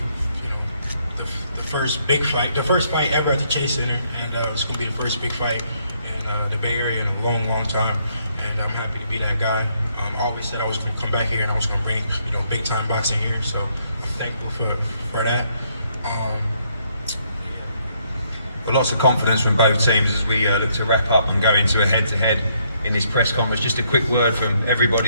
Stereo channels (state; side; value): inverted; both; correlation -0.71